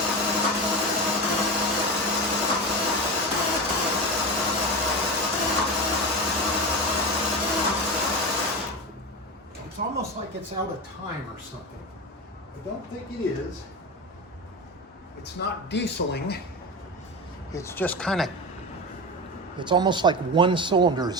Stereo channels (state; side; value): normal; both; correlation 0.23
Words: It's almost like it's out of time or something. I don't think it is. It's not dieseling. It's just kind of, it's almost like one cylinder